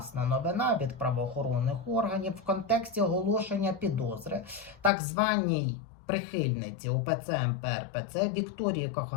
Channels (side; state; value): right; drops out; at 4.9 s